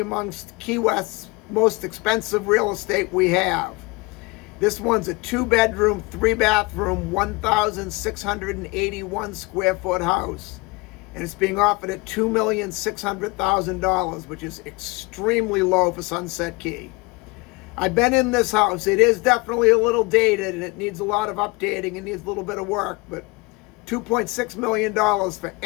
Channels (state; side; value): quieter; right; 25.0 dB